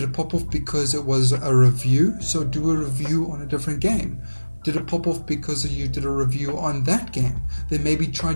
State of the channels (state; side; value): inverted; both; correlation -1.00